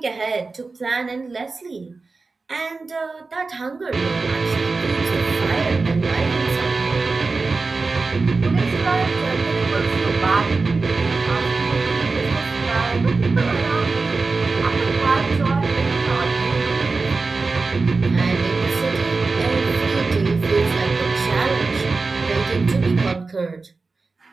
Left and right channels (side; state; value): left; quieter; 4.0 dB